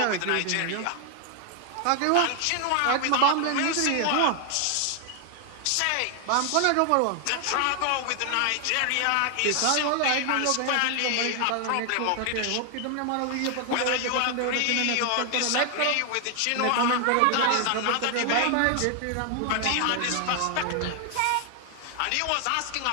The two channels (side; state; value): both; different; correlation 0.00